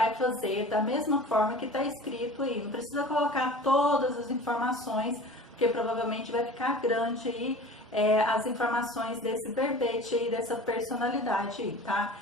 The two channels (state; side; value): normal; both; correlation 0.40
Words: fazer da mesma forma que está escrito aí. Não precisa colocar todas as informações, porque provavelmente vai ficar grande aí as informações desse verbete aí, dessa personalidade aí, tá?